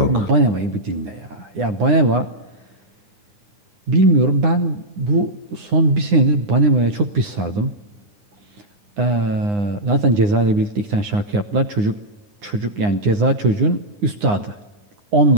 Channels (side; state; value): left; late; 9.8 ms